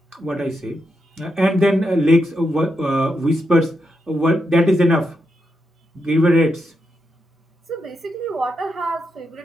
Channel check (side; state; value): both; normal; correlation 0.84